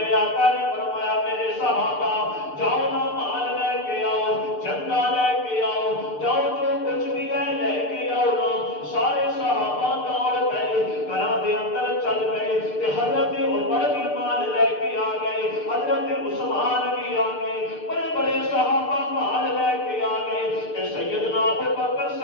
آقا نے فرمایا میرے صحابہ جاؤ نا مال لے کے آؤ، چندہ لے کے آؤ، جاؤ جو کچھ بھی ہے لے کے آؤ نا۔ سارے صحابہ دوڑ گئے، گھراں دے اندر چل گئے کہ حضرت عمر بھی مال لے کے آ گئے، حضرت عثمان بھی آ گئے، بڑے بڑے صحابہ مال لے کے آ گئے کہ سیدنا ابو بکر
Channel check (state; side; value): late; right; 6.7 ms